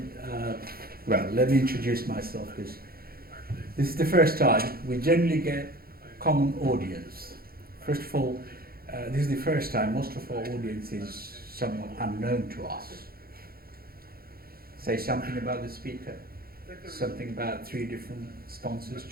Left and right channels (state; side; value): late; left; 0.44 ms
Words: Well, let me introduce myself, because this is the first time we generally get common audience. First of all, this is the first time most of our audience is somewhat unknown to us. Say something about the speaker, something about 3 different sponsors